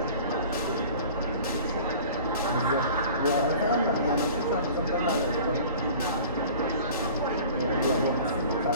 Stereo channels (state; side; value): inverted; both; correlation -0.44